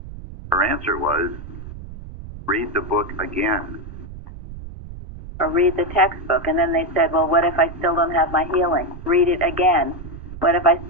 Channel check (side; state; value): right; noise; rumble, 13 dB below the sound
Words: Her answer was, read the book again. or read the textbook. And then they said, well, what if I still don't have my healing? Read it again. What if I